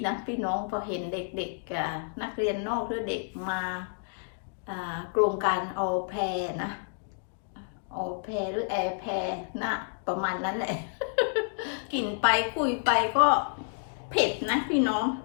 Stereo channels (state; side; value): silent; right; digital silence